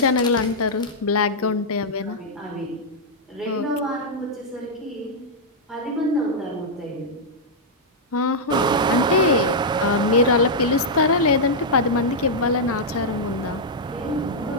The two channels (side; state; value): both; normal; correlation -0.06